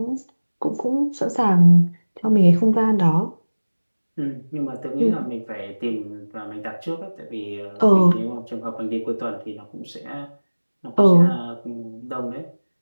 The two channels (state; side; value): inverted; both; correlation -1.00